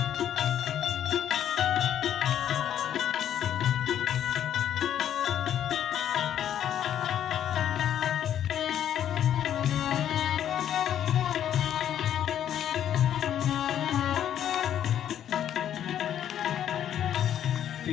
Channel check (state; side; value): quieter; right; 10.3 dB